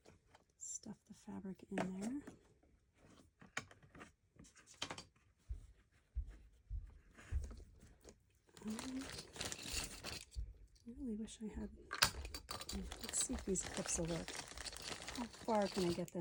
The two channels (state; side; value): identical; both; correlation 1.00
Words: Stuff the fabric in there. I really wish I had. Let's see if these clips will work. How far can I get